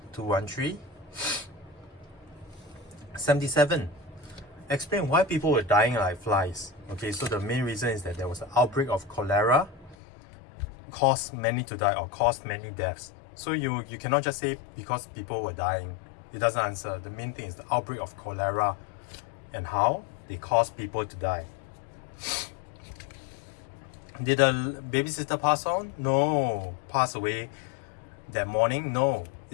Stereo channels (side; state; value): right; drops out; at 10.0 s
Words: 213. 77. Explain why people were dying like flies. Okay, so the main reason is that there was an outbreak of cholera, caused many to die or caused many deaths. So you cannot just say because people were dying. It doesn't answer. The main thing is the outbreak of cholera and how they caused people to die. Did the babysitter pass on? No. Pass away that morning? No.